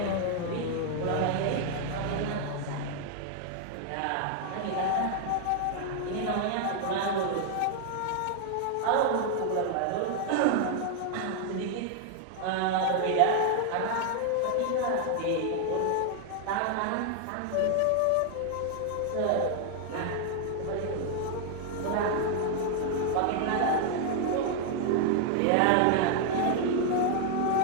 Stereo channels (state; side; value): different; both; correlation 0.00